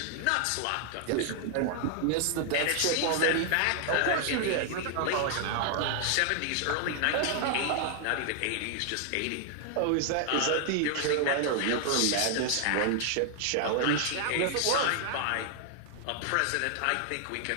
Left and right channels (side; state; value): both; different; correlation 0.00